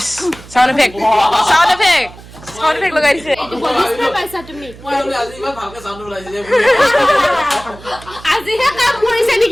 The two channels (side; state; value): right; noise; hum, 19 dB below the sound